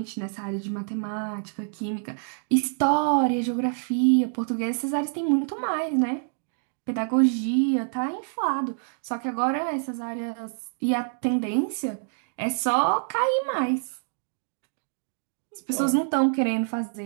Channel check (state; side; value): silent; left; digital silence